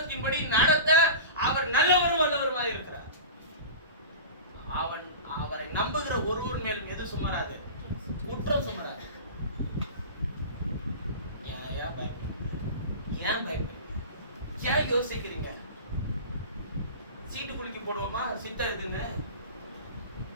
நடத்த அவர் நல்லவரும் வல்லவருமாக இருக்கிறார். அவரை நம்புகிற ஒருவர் மேலும் எது சுமராது? குற்றம் சுமராது. ஏன் பயப்படுறீங்க? ஏன் யோசிக்கிறீங்க? சீட்டு குலுக்கி போடுவோமா? சித்தம் எதுங்க?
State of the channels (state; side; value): inverted; both; correlation -0.32